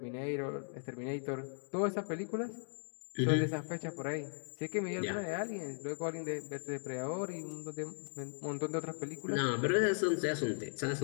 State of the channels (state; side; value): silent; right; digital silence